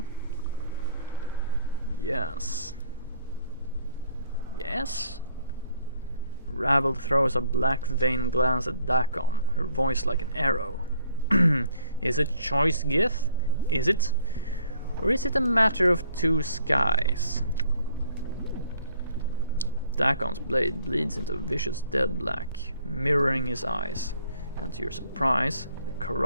Yes. Yes? Ravel throws a black vain glance at Dakon, her voice like an arrow. Is it choice, Gith? Is it? Or is it a matter of two skies? Dakon's blade bleeds into vicious dead black, mirroring his eyes, and to your surprise, the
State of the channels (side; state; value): both; inverted; correlation -0.62